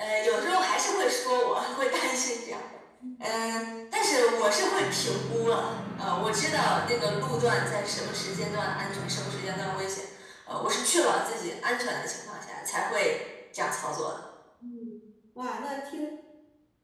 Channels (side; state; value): both; identical; correlation 1.00